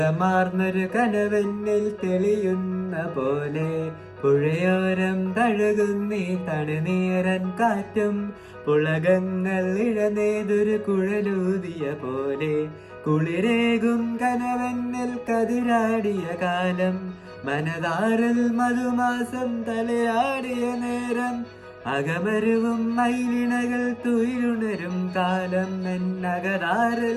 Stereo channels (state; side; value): identical; both; correlation 1.00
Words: കനവെന്നിൽ തെളിയുന്ന പോലെ പുഴയോരം തഴുകുന്നീ തണുനീരൻ കാറ്റും പുളകങ്ങൾ ഇഴനേതൊരു കുഴലൂതിയ പോലെ കുളിരേകും കനവെന്നിൽ കതിരാടിയ കാലം മനതാറിൽ മധുമാസം തലയാടിയ നേരം അകമരുവും മൈലിണകൾ തുയിലുണരും കാലം